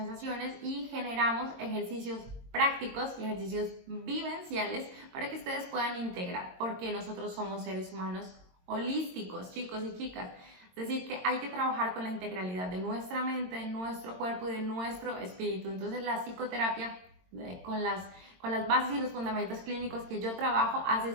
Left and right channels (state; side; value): late; left; 22 ms